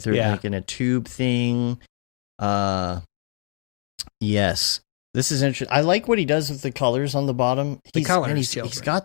it, like in a tube thing. Yes. This is interesting. I like what he does with the colors on the bottom. He's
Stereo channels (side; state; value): right; silent; digital silence